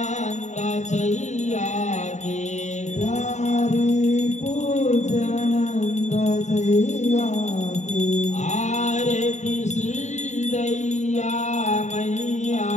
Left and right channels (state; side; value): late; right; 0.34 ms